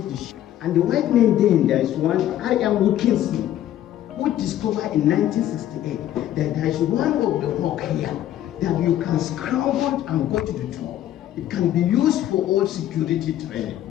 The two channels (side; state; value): right; quieter; 12.3 dB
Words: the ship. And the white men then, there is one, I.M. Wilkinson, who discovered in 1968 that there is one of the rock here that you can scramble and go to the top. It can be used for all security training.